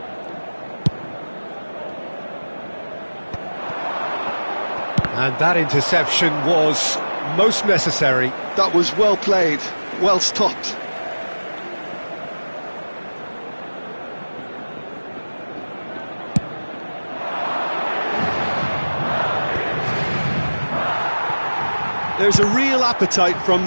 And that interception was most necessary. That was well played, well stopped. There's a real appetite from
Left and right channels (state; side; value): inverted; both; correlation -1.00